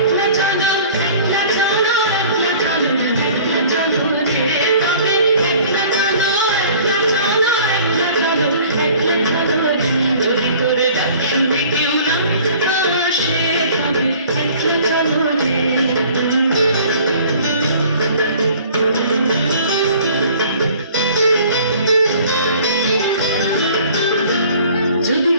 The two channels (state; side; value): inverted; both; correlation -0.50